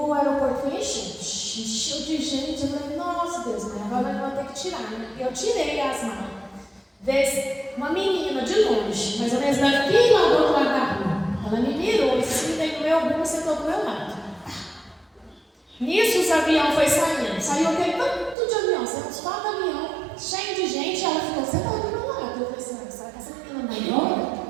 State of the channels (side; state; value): left; drops out; at 18.4 s